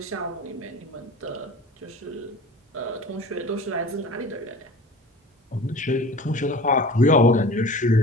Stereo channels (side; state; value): both; normal; correlation 0.39